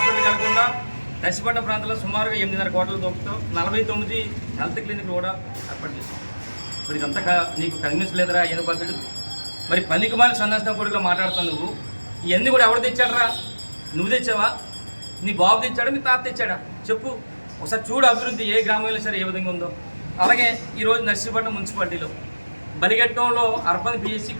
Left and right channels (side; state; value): both; inverted; correlation -1.00